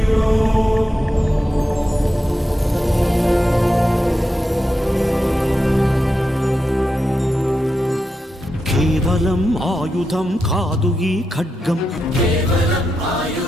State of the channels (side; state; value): both; normal; correlation 0.87